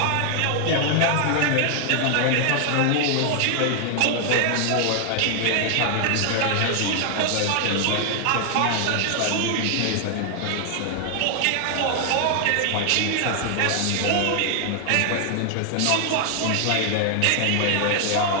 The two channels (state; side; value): different; both; correlation 0.00